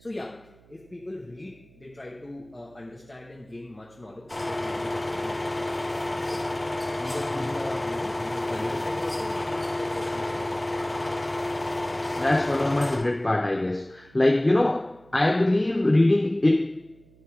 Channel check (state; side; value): noise; right; hum, 28 dB below the sound